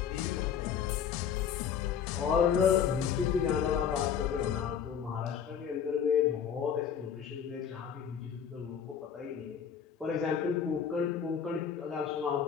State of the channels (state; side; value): quieter; right; 7.9 dB